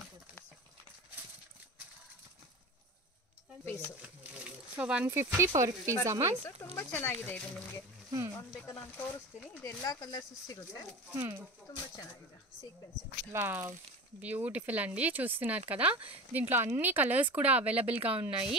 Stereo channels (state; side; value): normal; both; correlation 0.31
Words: So 150 per piece ಅಮ್ಮ. ತುಂಬಾ ಚೆನ್ನಾಗಿದೆ ಇದು. ನಿಮಗೆ ಒಂದು ಬೇಕಾದ್ರೆ ನಾನು ತೋರಿಸ್ತೀನಿ. ಇದು ಎಲ್ಲಾ ಕಲರ್ಸ್ ಸಿಗುತ್ತೆ. ತುಂಬಾ ಚೆನ್ನಾಗಿದೆ ಸೀಕ್ವೆನ್ಸ್. ವಾವ್, బ్యూటిఫుల్ అండి, చూస్తున్నారు కదా. దీంట్లో అన్ని కలర్స్ కూడా అవైలబుల్గా